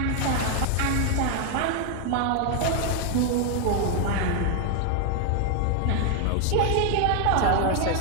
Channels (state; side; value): different; both; correlation 0.00